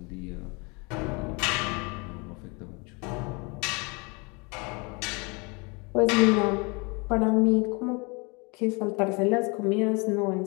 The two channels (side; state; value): right; quieter; 29.7 dB